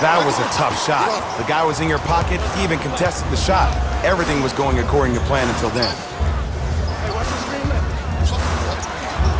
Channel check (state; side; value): identical; both; correlation 1.00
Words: That was a tough shot. The guy was in your pocket. He even contested the shot. Everything was going according to plan until then.